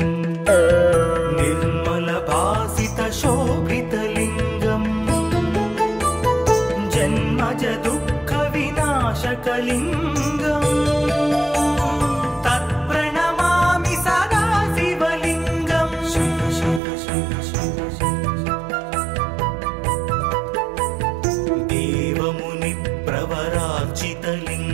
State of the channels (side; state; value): left; drops out; at 16.8 s